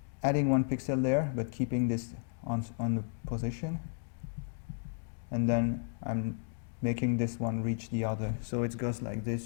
adding 1 pixel there, but keeping this on the position, and then I'm making this one reach the other, so it goes like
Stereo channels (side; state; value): right; silent; digital silence